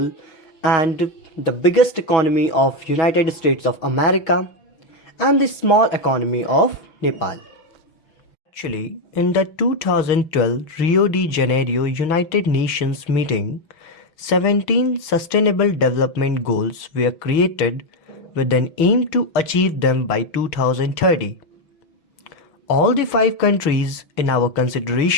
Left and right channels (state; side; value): late; right; 6.1 ms